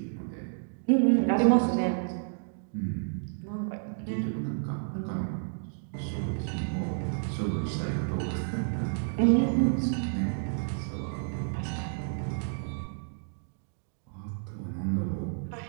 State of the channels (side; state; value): left; silent; digital silence